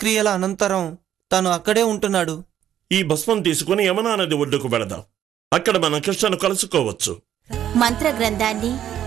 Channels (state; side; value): quieter; left; 10.6 dB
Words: అనంతరం తను అక్కడే ఉంటున్నాడు. ఈ భస్మం తీసుకుని యమునా నది ఒడ్డుకు వెళదాం. అక్కడ మనం కృష్ణను కలుసుకోవచ్చు. మంత్రగ్రంథాన్ని,